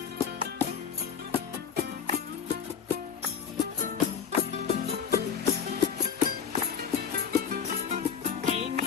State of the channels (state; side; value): quieter; right; 7.3 dB